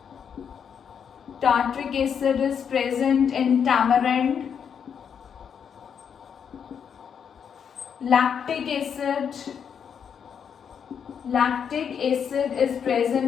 acid is present in tamarind. Lactic acid is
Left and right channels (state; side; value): quieter; right; 7.4 dB